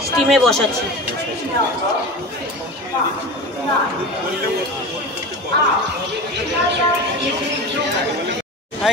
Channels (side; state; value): both; normal; correlation 0.30